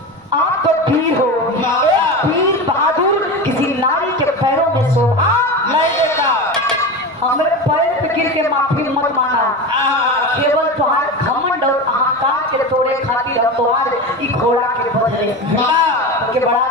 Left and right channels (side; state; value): right; noise; rumble, 29 dB below the sound